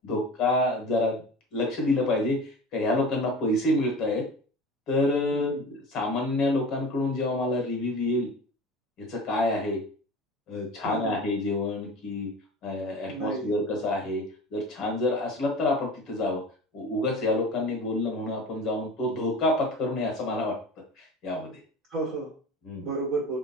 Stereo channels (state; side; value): normal; both; correlation 0.36